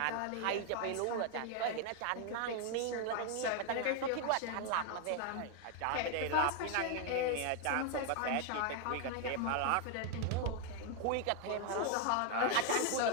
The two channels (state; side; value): different; both; correlation 0.01